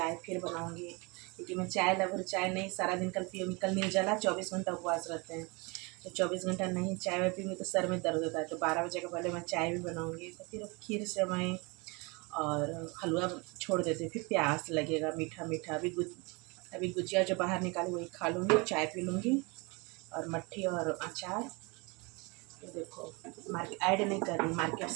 फिर बनाऊँगी, क्योंकि मैं चाय लवर चाय नहीं सारा दिन कल पीऊँगी। कल निर्जला 24 घंटा उपवास रहते हैं, तो 24 घंटा नहीं चाय में पीऊँगी तो सर में दर्द होता है, तो 12 बजे के पहले मैं चाय भी बनाऊँगी। तो फिर खीर सेवई और हलवा छोड़ देते, फिर प्यास लगेगा मीठा मीठा। अभी गुजिया जो बाहर निकाली वही खा लूँगी, चाय पी लूँगी और मट्ठी और अचार। तो देखो मार्केट ऐड नहीं कर रही, मार्केट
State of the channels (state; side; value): quieter; left; 28.3 dB